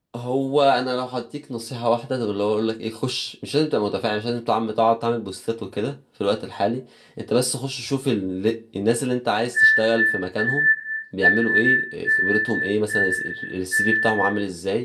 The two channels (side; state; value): both; identical; correlation 1.00